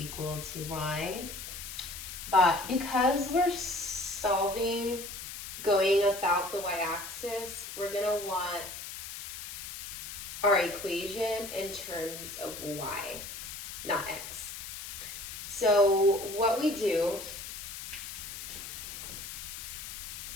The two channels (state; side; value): noise; left; hiss, 9 dB below the sound